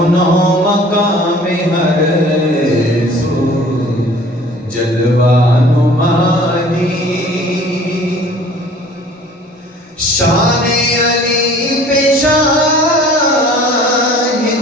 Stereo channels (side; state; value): both; normal; correlation 0.49